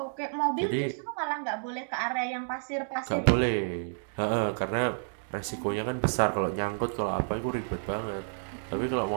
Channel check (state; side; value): silent; left; digital silence